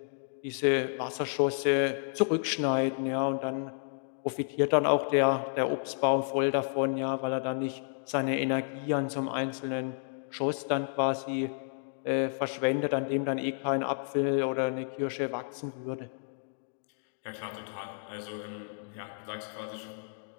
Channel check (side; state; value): right; silent; digital silence